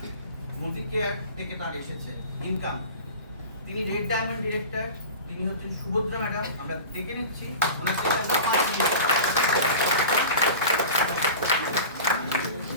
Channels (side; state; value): both; inverted; correlation -0.35